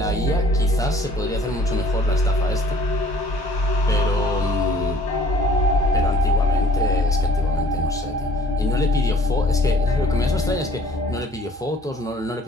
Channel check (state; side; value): normal; both; correlation 0.56